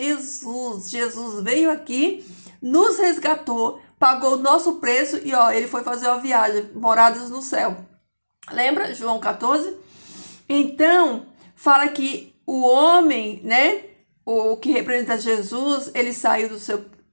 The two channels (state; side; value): inverted; both; correlation -1.00